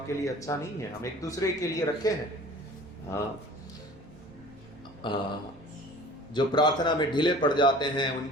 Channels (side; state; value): right; noise; rumble, 26 dB below the sound